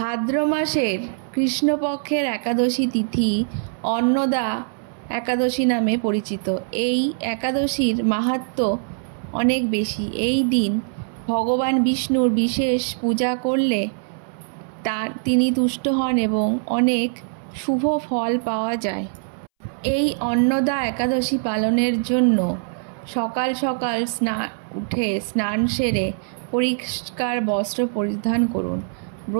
মাসের কৃষ্ণপক্ষের একাদশী তিথি অন্নদা একাদশী নামে পরিচিত। এই একাদশীর মাহাত্ম্য অনেক বেশি। এই দিন ভগবান বিষ্ণুর বিশেষ পূজা করলে তিনি তুষ্ট হন এবং অনেক শুভ ফল পাওয়া যায়। এই অন্নদা একাদশী পালনের জন্য সকাল সকাল উঠে স্নান সেরে পরিষ্কার বস্ত্র পরিধান করুন,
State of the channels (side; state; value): left; silent; 64 dB below the other